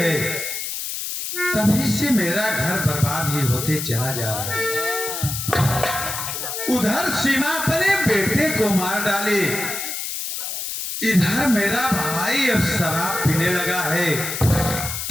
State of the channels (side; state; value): left; noise; hiss, 5 dB below the sound